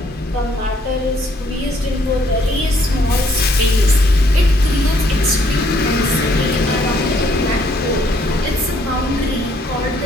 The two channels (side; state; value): both; normal; correlation 0.67